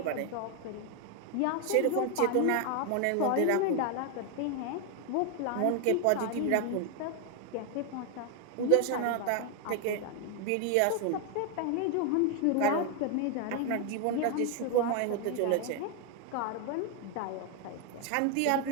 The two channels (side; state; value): both; different; correlation 0.01